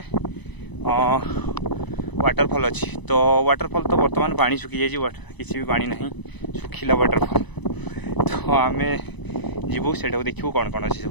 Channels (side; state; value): right; late; 1.0 ms